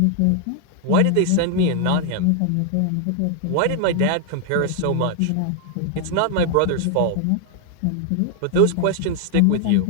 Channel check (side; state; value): both; different; correlation 0.00